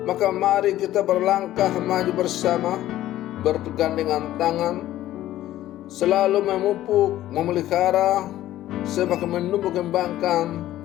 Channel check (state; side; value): quieter; right; 13.9 dB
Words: Maka mari kita berlangkah maju bersama, berpegandengan tangan, selalu memupuk, memelihara, semakin menumbuh kembangkan